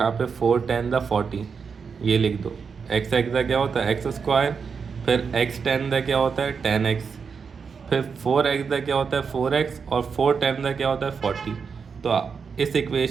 पे 4 10 द 40 ये लिख दो। एक्स एक्स का क्या होता है एक्स स्क्वायर, फिर एक्स 10 का क्या होता है 10x, फिर 4x का क्या होता है 4x, और 4 10 का क्या होता है 40। तो इस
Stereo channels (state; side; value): quieter; left; 5.8 dB